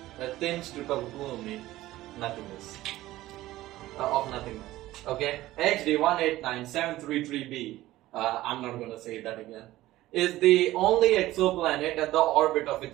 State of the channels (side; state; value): left; quieter; 16.2 dB